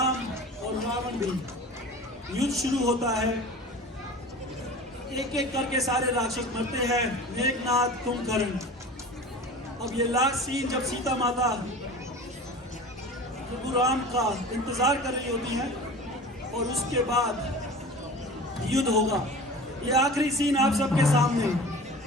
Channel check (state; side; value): normal; both; correlation 0.37